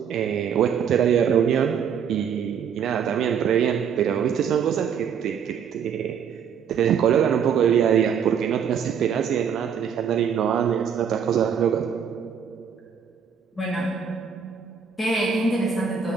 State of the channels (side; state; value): left; quieter; 7.4 dB